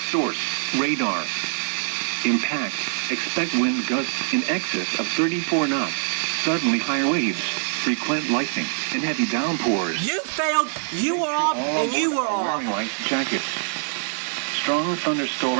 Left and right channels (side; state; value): left; silent; 63 dB below the other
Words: Source, radar. Impact, expect wind gusts in excess of 34 knots. Suddenly high waves, frequent lightning, and heavy downpours. You failed, you were off, and you were off. Light jackets. Strong